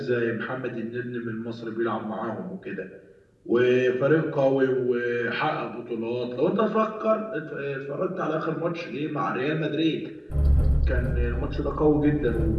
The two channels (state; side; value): identical; both; correlation 1.00